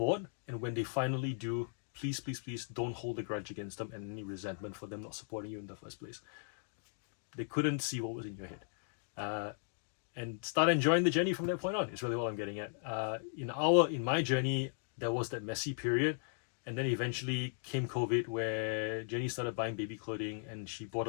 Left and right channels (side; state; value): right; silent; digital silence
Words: and when they finally do, please don't hold a grudge against them and any resentment for them not supporting you in the first place. They couldn't see what was in your head. And start enjoying the journey from that point on is really what I'm getting at. In my journey, there was that messy period, and then eventually came COVID, where Jenny started buying baby clothing and she bought